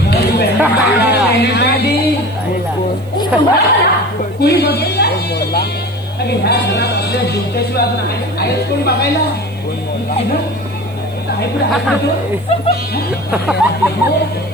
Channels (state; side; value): noise; right; hiss, 29 dB below the sound